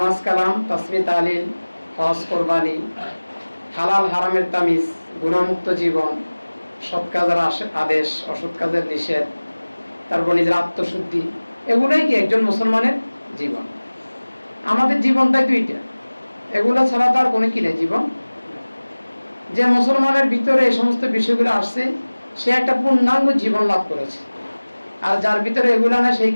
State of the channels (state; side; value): inverted; both; correlation -1.00